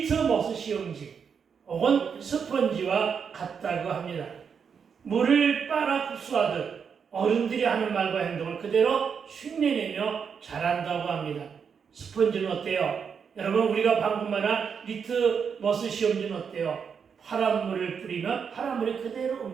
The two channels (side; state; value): left; quieter; 6.6 dB